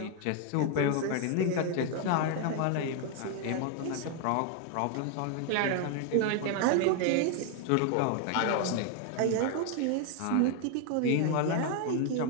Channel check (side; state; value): both; different; correlation 0.01